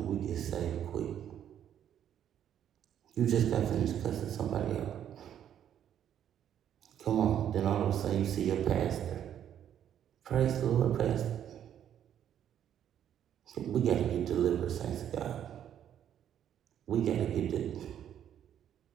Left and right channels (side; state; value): left; quieter; 10.0 dB